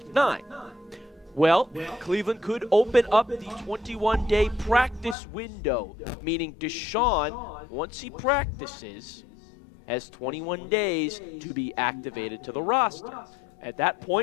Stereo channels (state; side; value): drops out; right; at 5.2 s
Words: 9, well, Cleveland could open up the 21-day practice window, meaning Deshaun, once he practices, has 21 days to be activated to the roster. At that